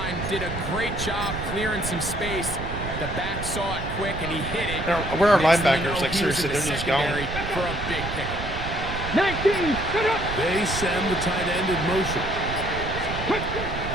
did a great job clearing some space. The back saw it quick, and he hit it. Where are Next thing you linebackers? know, Like, he was in seriously, the they're just gone. secondary for a big pickup. They send the tight end in motion.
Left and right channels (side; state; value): right; noise; rumble, 6 dB below the sound